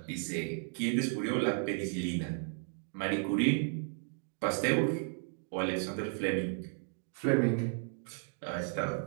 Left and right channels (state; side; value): silent; left; 55 dB below the other